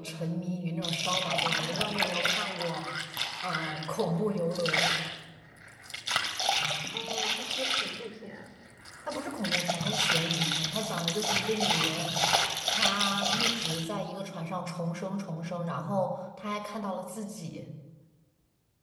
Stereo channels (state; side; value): identical; both; correlation 1.00